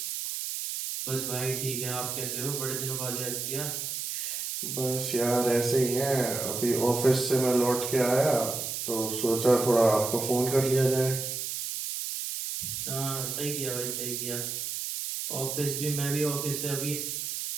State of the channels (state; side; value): noise; right; hiss, 4 dB below the sound